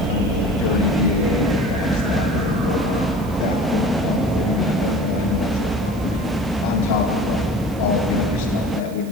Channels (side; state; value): right; noise; hiss, 21 dB below the sound